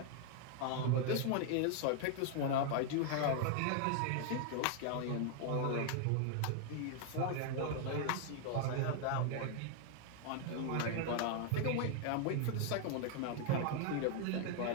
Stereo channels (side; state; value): both; different; correlation 0.00